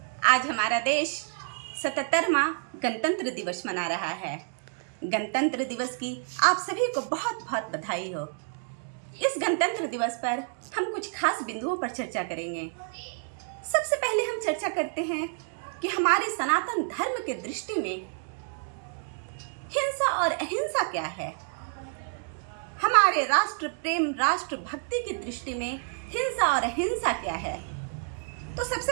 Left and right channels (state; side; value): silent; left; 57 dB below the other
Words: आज हमारा देश 77वां गणतंत्र दिवस मना रहा है। गणतंत्र दिवस की आप सभी को बहुत बहुत बधाई हो। इस गणतंत्र दिवस पर हम कुछ खास बिंदुओं पर चर्चा करेंगे। सबसे पहले हम चर्चा करते हैं कि हमारे सनातन धर्म के दृष्टि में हिंसा और अहिंसा क्या है। हमारे राष्ट्र प्रेम, राष्ट्र भक्ति की दृष्टि में हिंसा और अहिंसा क्या है। तो